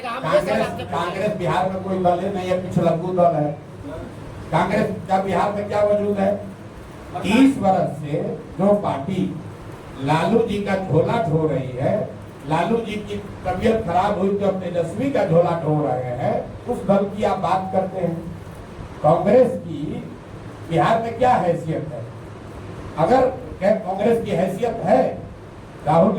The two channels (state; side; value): identical; both; correlation 1.00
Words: हम कांग्रेस बिहार में कोई दल नहीं है, पिछलग्गू दल है। कांग्रेस का बिहार में क्या वजूद है? 30 वर्ष से जो पार्टी लालू जी का झोला ढो रही है, लालू जी की तबीयत खराब हुई तो तेजस्वी का झोला ढो रहे हैं, उस दल की आप बात करते हैं। कांग्रेस की बिहार में क्या हैसियत है? अगर कांग्रेस की हैसियत है, राहुल